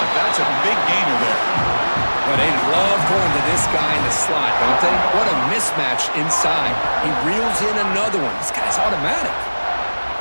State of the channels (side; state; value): both; inverted; correlation -1.00